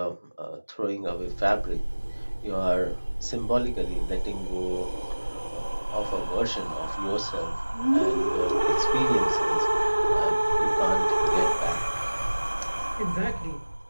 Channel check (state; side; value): inverted; both; correlation -1.00